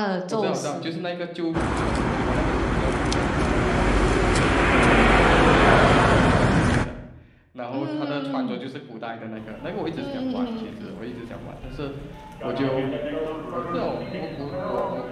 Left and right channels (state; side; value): identical; both; correlation 1.00